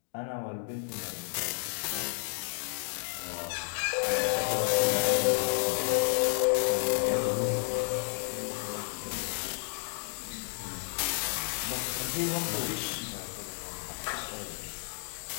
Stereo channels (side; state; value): right; silent; digital silence